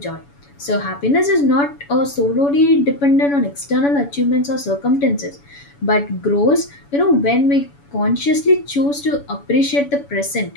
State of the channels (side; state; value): right; late; 7.0 ms